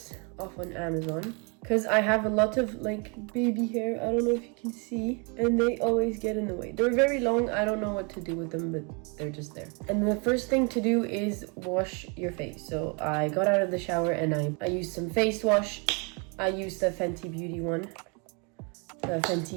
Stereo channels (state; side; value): quieter; left; 33.7 dB